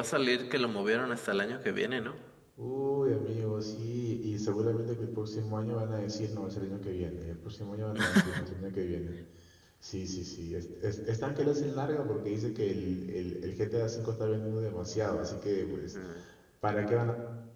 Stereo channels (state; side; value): identical; both; correlation 1.00